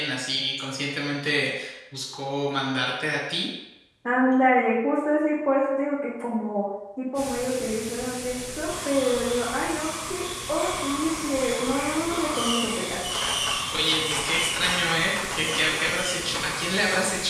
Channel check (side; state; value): both; identical; correlation 1.00